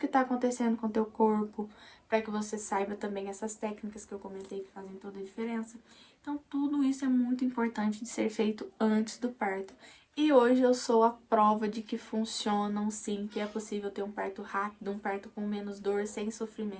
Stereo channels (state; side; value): identical; both; correlation 1.00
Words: está acontecendo com o teu corpo, para que você saiba também essas técnicas que eu comentei que fazem toda a diferença. Então, tudo isso é muito importante de ser feito antes do parto. E hoje eu sou a prova de que funcionam sim, que é possível ter um parto rápido, um parto com menos dor, sem